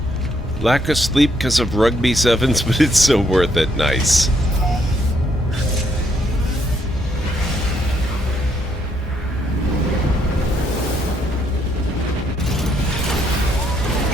Lack of sleep because of rugby sevens, but it's so worth it. Nice.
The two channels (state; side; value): normal; both; correlation 0.72